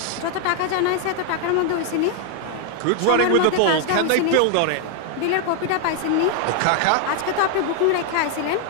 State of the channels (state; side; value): different; both; correlation 0.00